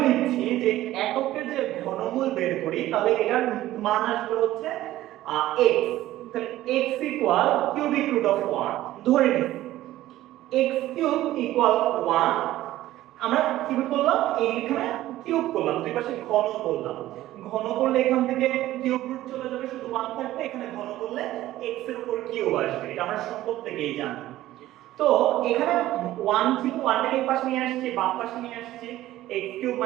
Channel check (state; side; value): quieter; left; 15.0 dB